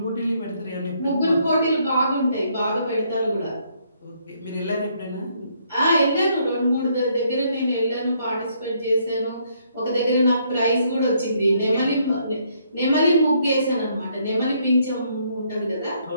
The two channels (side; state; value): both; inverted; correlation -0.70